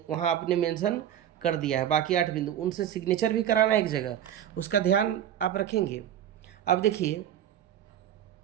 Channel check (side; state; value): left; quieter; 10.6 dB